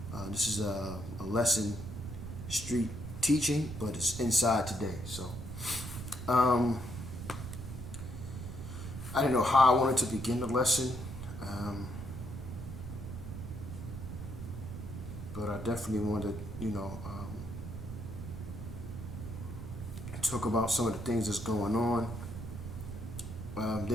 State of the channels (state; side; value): noise; right; rumble, 8 dB below the sound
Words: this is a lesson, street teaching, but it's inside today. So I didn't know how I wanted to begin the lesson, but I definitely wanted to talk about some of the things that's going on.